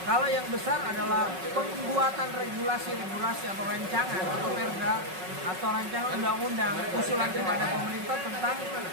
Kalau yang besar adalah pembuatan regulasi atau rancangan atau perda atau rancangan undang-undang usulan kepada pemerintah tentang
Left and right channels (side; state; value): left; late; 5.4 ms